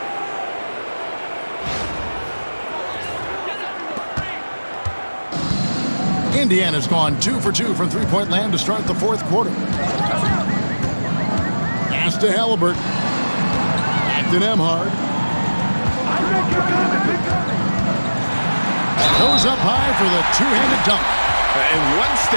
Indiana's gone 2 for 2 from 3-point land to start the fourth quarter. Pass Pass to Halliburton. Back to Nembhard. Goes up high for the two-handed dunk. And one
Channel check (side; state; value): both; inverted; correlation -1.00